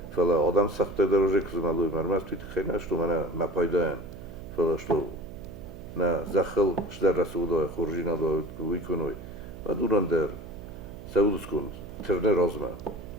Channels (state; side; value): noise; right; hum, 14 dB below the sound